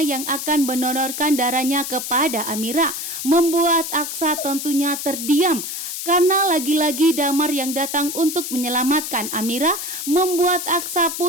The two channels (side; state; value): left; noise; hiss, 6 dB below the sound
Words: yang akan mendonorkan darahnya kepada Amira, membuat Aksa tentunya terdiam. Karena lagi-lagi Damar yang datang untuk menyelamatkan Amira membuat Aksa